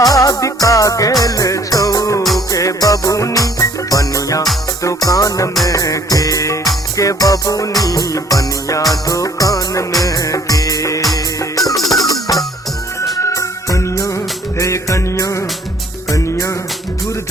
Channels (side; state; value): both; normal; correlation 0.59